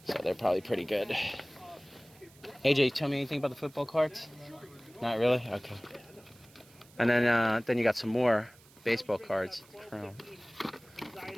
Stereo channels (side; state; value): right; noise; hiss, 26 dB below the sound